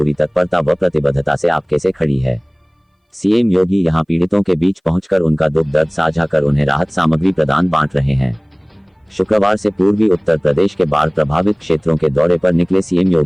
तत्परता व प्रतिबद्धता से आपके से खड़ी है। सीएम योगी यहां पीड़ितों के बीच पहुंचकर उनका दुख दर्द साझा कर उन्हें राहत सामग्री प्रदान बांट रहे हैं। शुक्रवार से पूर्वी उत्तर प्रदेश के बाढ़ प्रभावित क्षेत्रों के दौरे पर निकले सीएम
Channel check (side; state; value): both; identical; correlation 1.00